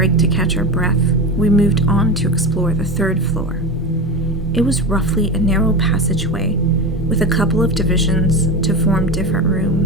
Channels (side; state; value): both; normal; correlation 0.23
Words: to catch our breath, we moved on to explore the 3rd floor. It was roughly a narrow passageway with a couple of divisions to form different